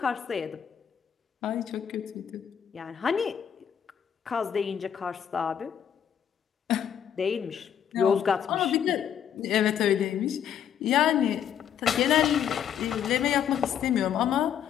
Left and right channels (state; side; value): quieter; right; 8.9 dB